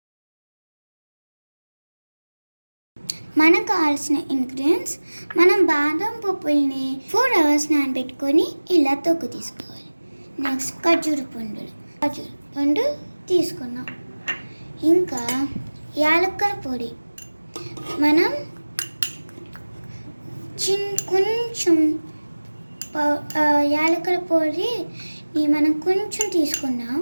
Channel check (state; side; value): inverted; both; correlation -1.00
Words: మనకు కావాల్సిన ఇంగ్రీడియంట్స్, మనం బాదం పప్పుల్ని 4 hours నానబెట్టుకొని ఇలా తొక్కు తీసుకోవాలి. నెక్స్ట్ ఖర్జూర పండు తీసుకున్నాం. ఇంకా యాలక్కల పొడి మనం కొంచెం యాలక్కల పొడిని మనం కొంచెం తీసుకున్నాం.